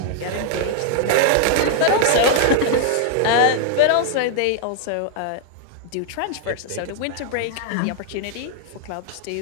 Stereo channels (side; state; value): both; different; correlation 0.00